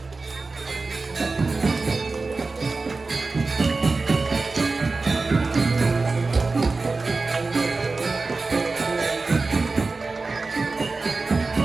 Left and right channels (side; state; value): left; quieter; 3.8 dB